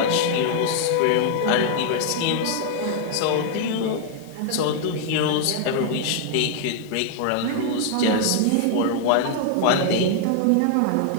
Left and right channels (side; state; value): both; different; correlation 0.00